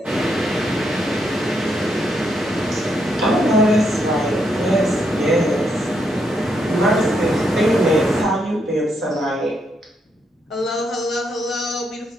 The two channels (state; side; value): normal; both; correlation 0.78